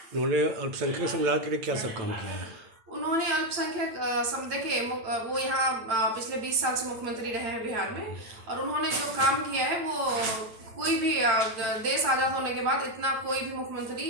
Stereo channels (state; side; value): late; left; 9.0 ms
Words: उन्होंने अल्पसंख्यक समुदाय के लिए क्या सब काम किया है? उन्होंने अल्पसंख्यक देखिए, वो यहाँ पिछले 20 साल से मुख्यमंत्री रहे हैं बिहार में, और उन्होंने जो काम किया है वो कोई भी देश आज़ाद होने के बाद इतना कोई भी